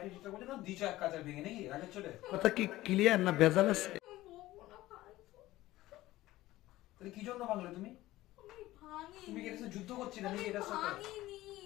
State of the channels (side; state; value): right; quieter; 16.7 dB